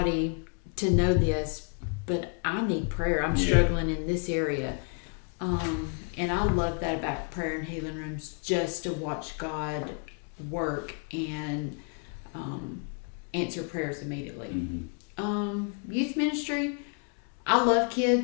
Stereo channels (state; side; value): quieter; right; 36.8 dB